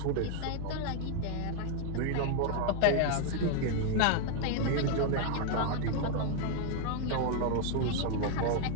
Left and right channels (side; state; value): both; different; correlation 0.01